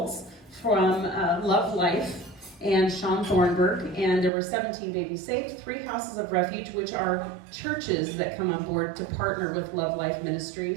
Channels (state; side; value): drops out; left; at 4.3 s